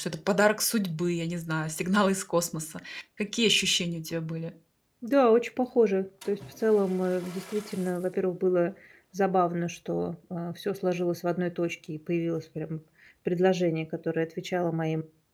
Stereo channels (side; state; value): both; identical; correlation 1.00